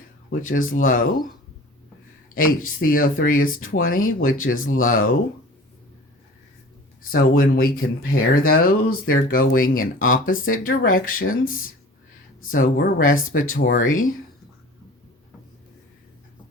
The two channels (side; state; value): both; normal; correlation 0.42